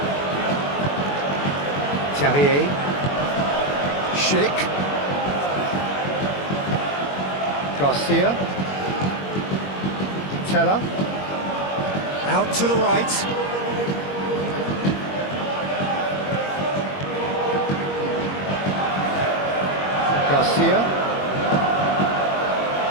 Terrier. Schick. Garcia. Teller. Out to the right. Garcia.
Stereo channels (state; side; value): late; right; 21 ms